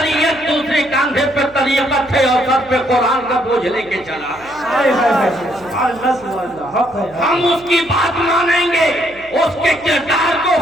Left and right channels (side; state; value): right; noise; hum, 25 dB below the sound